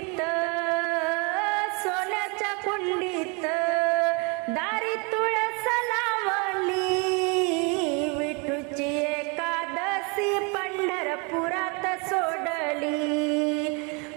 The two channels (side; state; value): left; quieter; 32.0 dB